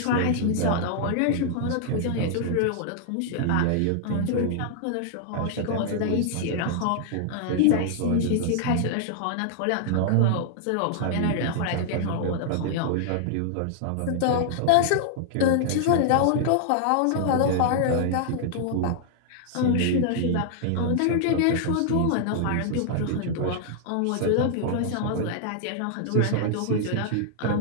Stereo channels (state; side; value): different; both; correlation -0.01